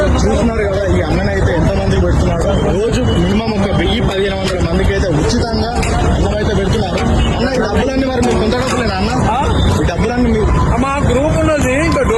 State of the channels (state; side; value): identical; both; correlation 1.00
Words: చూస్తున్నారు కదా ఈ అన్ననైతే ఎంతమంది పెడుతున్నారో రోజు మినిమం ఒక 1000-1500 మందికి అయితే ఉచితంగా అన్నం అయితే పెడుతున్నారు. అన్న ఈ డబ్బులన్నీ మరి మీరు కొంత డబ్బులేనా అన్న? ఈ డబ్బులన్నీ మీరు మా గ్రూప్ ఉన్నది, ఇంకా